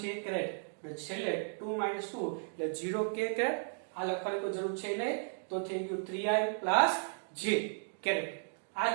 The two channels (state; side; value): silent; left; digital silence